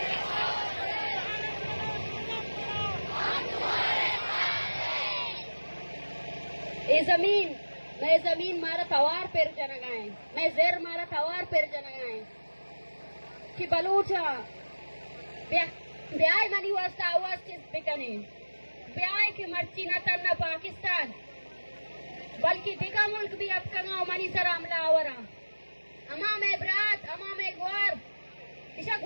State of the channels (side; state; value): both; inverted; correlation -1.00